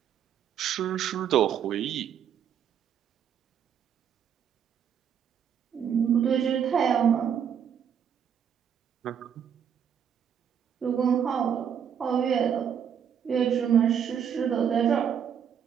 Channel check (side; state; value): left; quieter; 8.2 dB